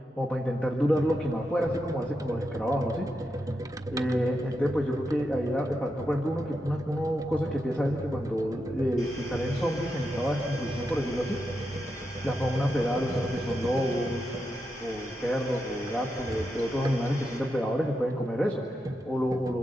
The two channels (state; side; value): normal; both; correlation 0.86